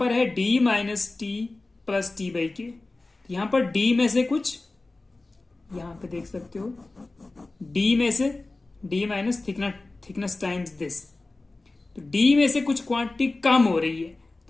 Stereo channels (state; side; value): quieter; right; 3.2 dB